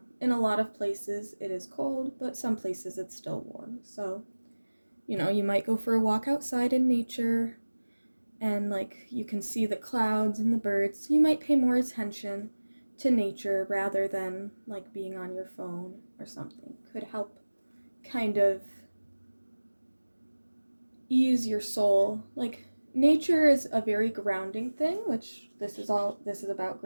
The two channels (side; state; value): both; inverted; correlation -1.00